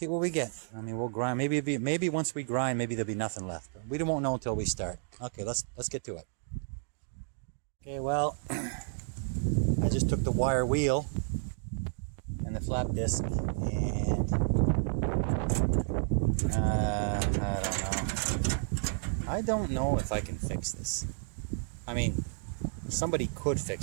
we get. I mean, we'll grind. Maybe once we grind, maybe there'll be nothing left. But we won't know until we start. Okay, let's get to it. Okay, well, I just took the wire wheel and the flap disc, and I don't know if I can fix this. I mean, somebody could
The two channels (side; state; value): left; silent; digital silence